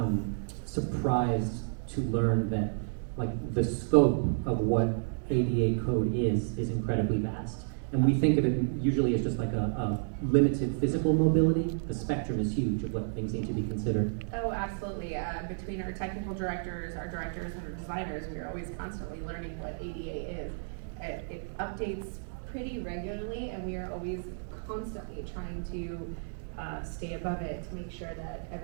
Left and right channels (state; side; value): silent; left; digital silence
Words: surprised to learn that the scope of what ADA code is incredibly vast. And we think of it usually as just like a limited physical mobility. The spectrum is huge of what things need to be considered. Oh, absolutely. Between our technical directors, our directors, and our designers, we are always constantly learning what ADA is. It updates pretty regularly, and we are always constantly trying to stay above it to make sure that